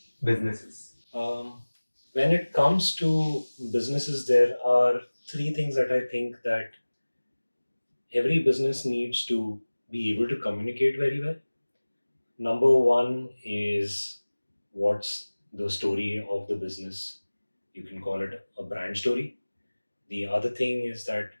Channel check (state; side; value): inverted; both; correlation -1.00